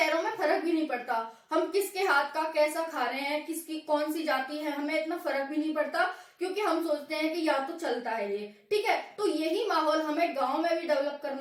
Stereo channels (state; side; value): identical; both; correlation 1.00